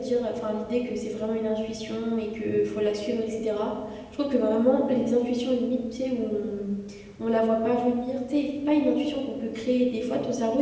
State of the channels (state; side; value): identical; both; correlation 1.00